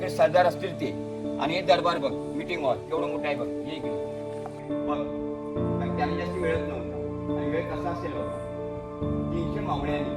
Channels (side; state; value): both; identical; correlation 1.00